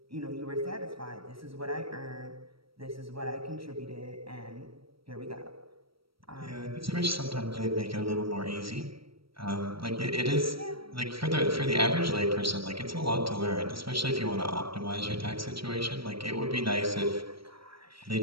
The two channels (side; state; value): left; late; 0.75 ms